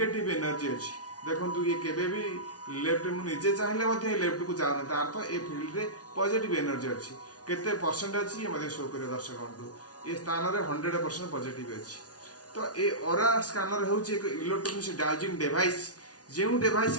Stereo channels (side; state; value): right; late; 0.68 ms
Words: एनर्जी अछि। देखंतु ये केबे भी लेफ्ट मु निजे चाहिले मध्ये लेफ्ट को जानो तार तो ए फील्ड रे पॉजिटिव एनर्जी अछि। केते परसेंट अछि ये मध्ये शो करे दर्शक बंधु, ए स्थान रे 100% पॉजिटिव अछि। तो ए ऑरा स्कैनर होउची एक इलेक्ट्रॉनिक डाउजिंग डिवाइस, जेउ डिवाइस